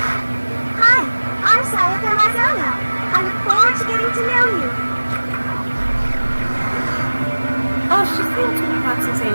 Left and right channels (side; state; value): both; inverted; correlation -1.00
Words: Hi, I'm Sayaka Mazono. I look forward to getting to know you. Oh, she's the ultimate pop